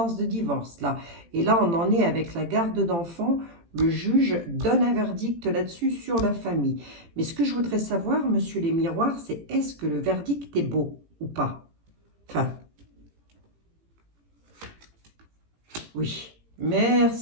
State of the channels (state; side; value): late; left; 18 ms